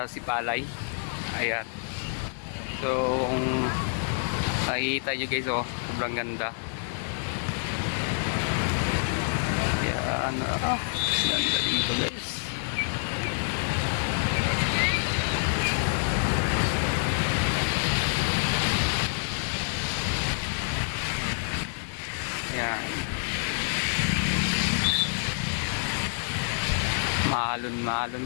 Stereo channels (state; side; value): silent; right; digital silence